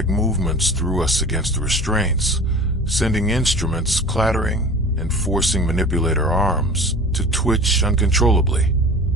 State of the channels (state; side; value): normal; both; correlation 0.39